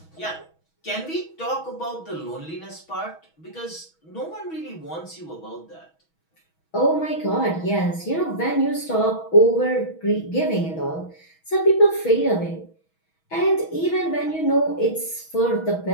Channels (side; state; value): right; late; 6.2 ms